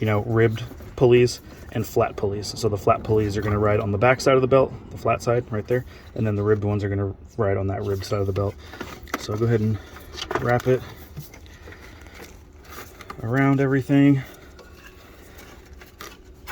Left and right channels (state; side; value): identical; both; correlation 1.00